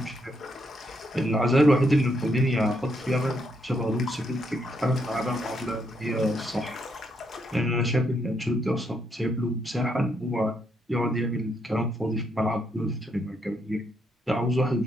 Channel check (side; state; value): both; normal; correlation 0.77